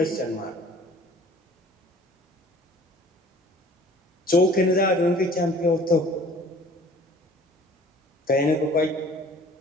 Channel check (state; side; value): normal; both; correlation 0.50